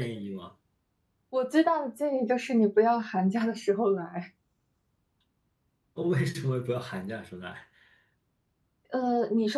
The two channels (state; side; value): identical; both; correlation 1.00